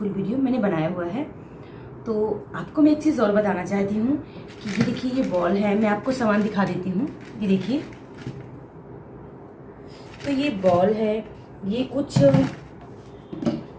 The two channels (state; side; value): identical; both; correlation 1.00